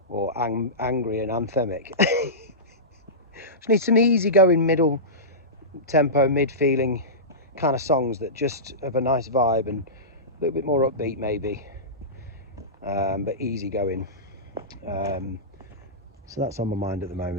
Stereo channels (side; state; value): both; normal; correlation -0.18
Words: or angry and anthemic. Just need some easy-going middle tempo, mid-feeling kind of songs that just have a nice vibe and a little bit more upbeat maybe, but easy-going. So that's on my mind at the